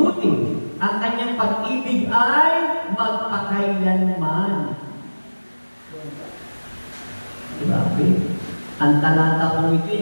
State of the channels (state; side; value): inverted; both; correlation -1.00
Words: Ang kanyang pag-ibig ay magpakailanman. Grabe. Ang talata ko